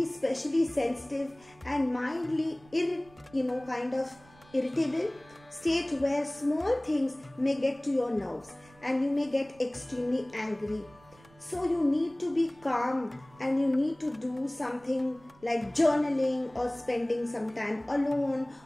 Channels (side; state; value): right; noise; rumble, 27 dB below the sound